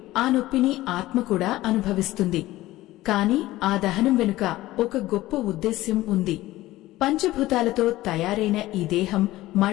ఆ నొప్పిని ఆత్మ కూడా అనుభవిస్తుంది. కాని ఆ దహనం వెనుక ఒక గొప్ప ఉద్దేశ్యం ఉంది. పంచభూతాలతో తయారైన ఈ దేహం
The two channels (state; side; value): quieter; right; 16.8 dB